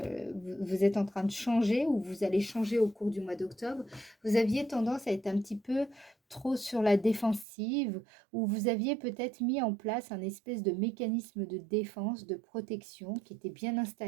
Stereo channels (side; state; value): left; drops out; at 7.5 s